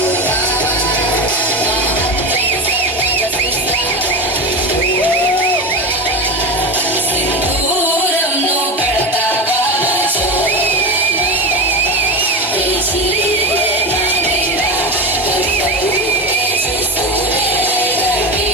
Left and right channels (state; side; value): normal; both; correlation 0.21